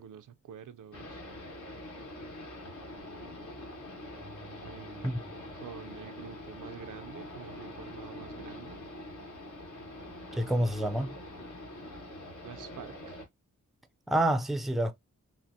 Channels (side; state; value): both; normal; correlation 0.76